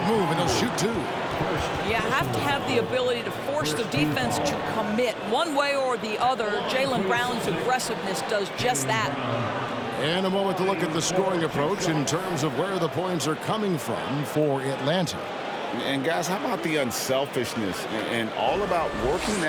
move, and he'll shoot 2. You have to have the ability to force the defense to commit one way or the other. Jaylen Brown's aggressiveness does just that. And a moment to look at the scoring approach in terms of where the points are coming from for Atlanta. And guys, how about the unselfishness and all about working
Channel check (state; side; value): identical; both; correlation 1.00